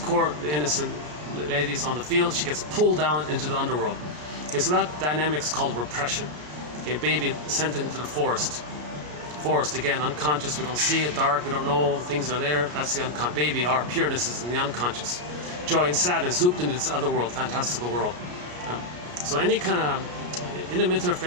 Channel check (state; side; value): late; left; 33 ms